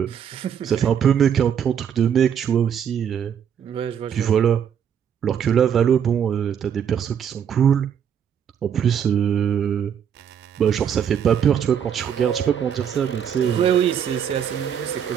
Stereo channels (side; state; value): left; quieter; 8.4 dB